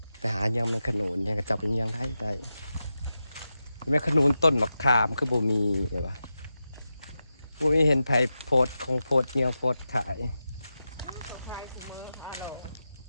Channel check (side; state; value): both; inverted; correlation -0.91